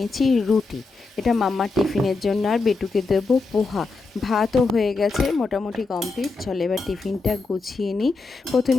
রুটি। এটা মাম্মার টিফিনের জন্য, আর বেটুকে দেবো পোহা। ভাতও হয়ে গেছে, মোটামুটি কমপ্লিট। চলো এবার টিফিনটা গুছিয়ে নিই।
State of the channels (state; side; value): quieter; right; 3.9 dB